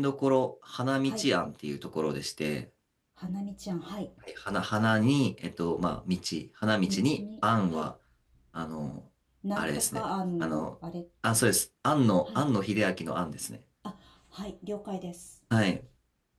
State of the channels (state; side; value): identical; both; correlation 1.00